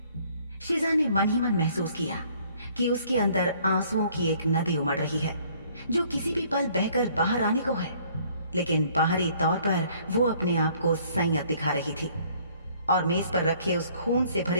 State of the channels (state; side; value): inverted; both; correlation -0.60